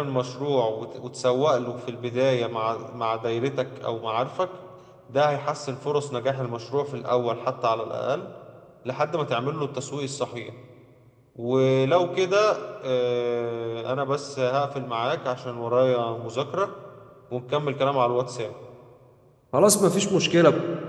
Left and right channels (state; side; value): identical; both; correlation 1.00